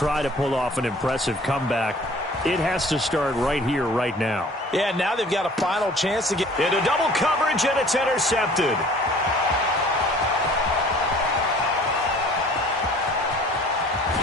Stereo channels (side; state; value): both; normal; correlation 0.50